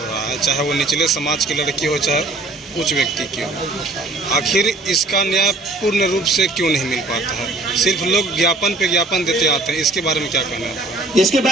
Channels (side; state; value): left; quieter; 3.0 dB